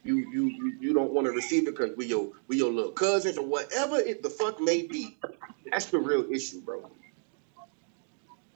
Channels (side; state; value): left; silent; digital silence